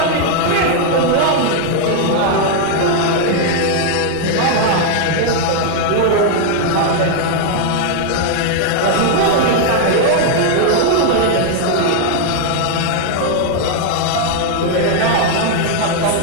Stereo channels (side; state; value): both; different; correlation 0.00